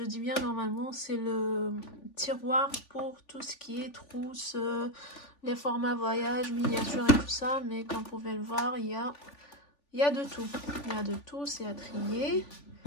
dis bien normalement, c'est le tiroir pour tout ce qui est trousse, les formats voyage, miniature et tout ça. Mais comme vous pouvez le voir, il y a de tout. Il y a de tout, c'est à trier.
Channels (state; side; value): late; right; 3.4 ms